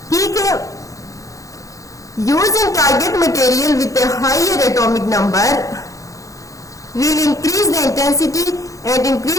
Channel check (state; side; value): late; right; 0.16 ms